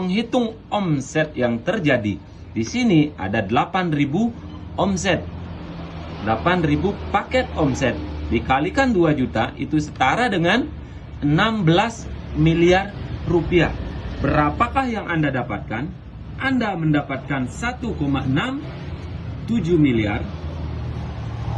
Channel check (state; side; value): identical; both; correlation 1.00